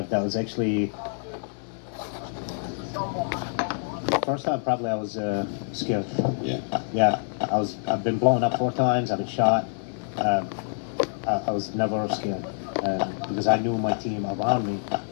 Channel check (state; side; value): silent; right; 61 dB below the other